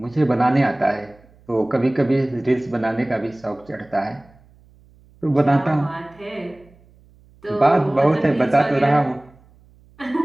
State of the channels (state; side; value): noise; right; hum, 29 dB below the sound